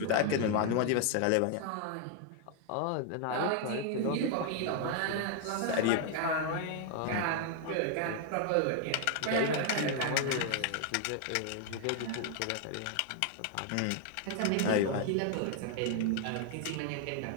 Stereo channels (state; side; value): different; both; correlation 0.00